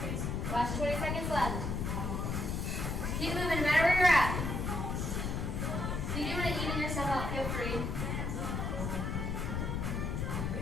Last 20 seconds left. Keep moving no matter where you're at. If you do want to even yourself out, feel free.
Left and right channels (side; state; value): left; noise; rumble, 1 dB below the sound